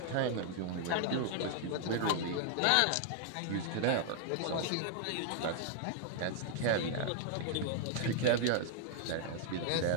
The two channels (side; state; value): both; different; correlation 0.00